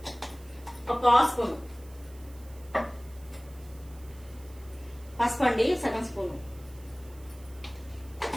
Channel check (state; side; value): noise; right; hiss, 24 dB below the sound